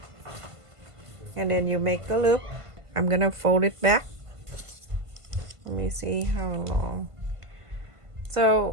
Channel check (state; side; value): late; left; 1.5 ms